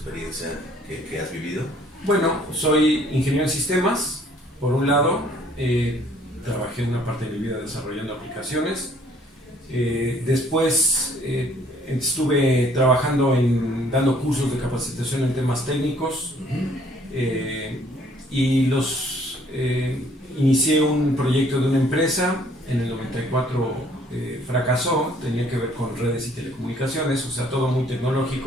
que has vivido. Bueno, soy ingeniero en sistemas, por un lado. Trabajé una parte de mi vida desarrollando aplicaciones. Después estuve trabajando dando cursos de capacitación en temas técnicos. Inicié un proyecto de una empresa. En el 94 fracasó, tenía que ver con redes y telecomunicaciones, o sea, todo muy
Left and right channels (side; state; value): both; normal; correlation 0.60